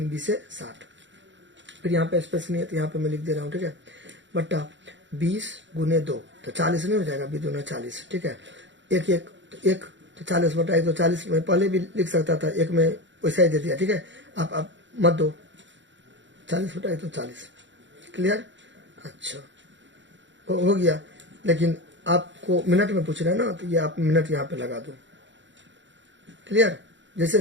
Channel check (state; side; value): late; left; 0.54 ms